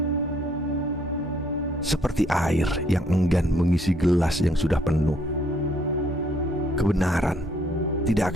Seperti air yang enggan mengisi gelas yang sudah penuh, kebenaran tidak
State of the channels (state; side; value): normal; both; correlation 0.66